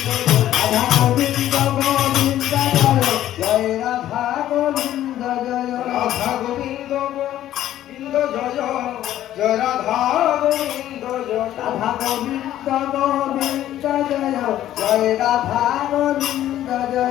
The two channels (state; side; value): quieter; right; 12.6 dB